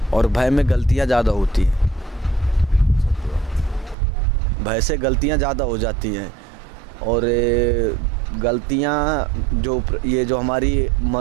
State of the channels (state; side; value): drops out; left; at 4.0 s